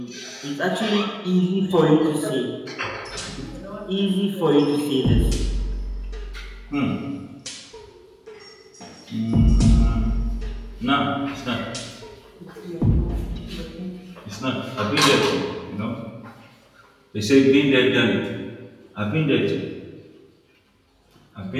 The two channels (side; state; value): both; identical; correlation 1.00